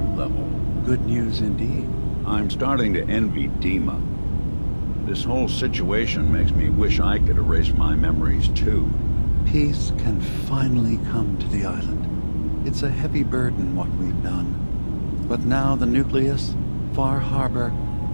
level. Good news indeed. I'm starting to envy DiMA. This whole situation makes me wish I could erase my memories too. Peace can finally come to the island. It's a heavy burden what we've done. But now the Nucleus, Far Harbor,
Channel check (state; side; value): inverted; both; correlation -1.00